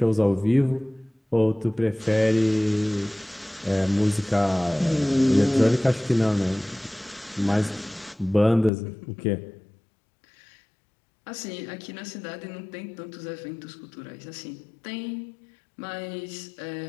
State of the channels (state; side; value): drops out; right; at 8.7 s